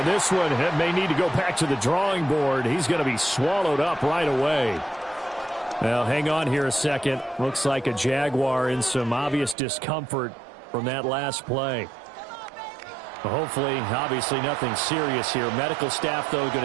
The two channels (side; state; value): left; drops out; at 9.6 s